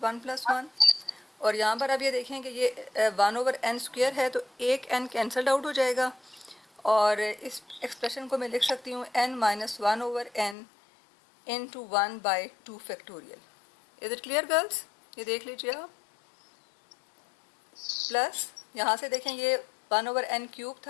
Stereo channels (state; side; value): drops out; right; at 10.6 s